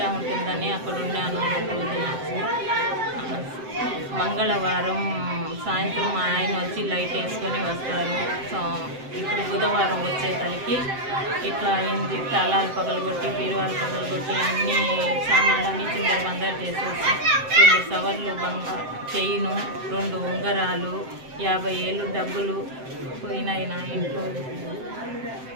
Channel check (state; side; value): late; left; 7.7 ms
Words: ఉంటుందని అక్కడ ఉన్నాను 2 రోజులు. మంగళవారం సాయంత్రం మా ఆయన వచ్చి లైట్ వేసుకొని వస్తారు. ఇప్పుడు బుధవారం వచ్చేసరికి ఇట్లా అయింది. తాళాలు పగలగొట్టి బీరువాలు పగలగొట్టి అన్ని సామాన్లన్నీ చిందరబందరు చేసేసి 2 సవర్లు చైను, 2 ఉంగరాలు, 50,000 డబ్బులు పోయినాయి నా ఇంట్లో.